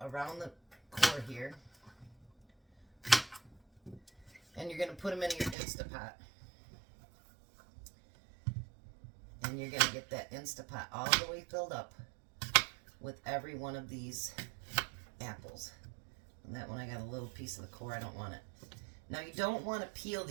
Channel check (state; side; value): drops out; left; at 5.6 s